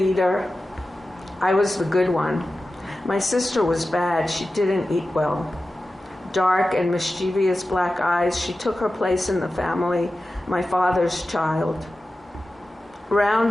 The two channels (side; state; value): both; normal; correlation 0.94